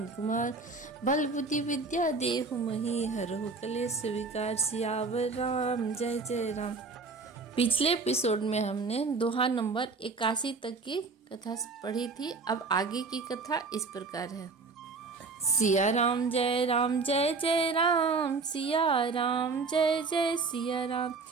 कुमार, बल बुद्धि विद्या देहु महि हरहु कलेश विकार। सियावर राम जय जय राम। पिछले एपिसोड में हमने दोहा नंबर 81 तक की कथा पढ़ी थी। अब आगे की कथा इस प्रकार है। सिया राम जय जय राम, सिया राम जय जय सिया राम।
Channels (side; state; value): left; quieter; 4.3 dB